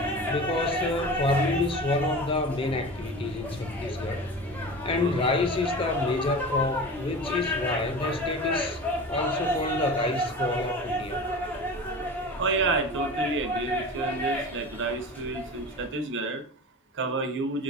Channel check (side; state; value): both; normal; correlation 0.33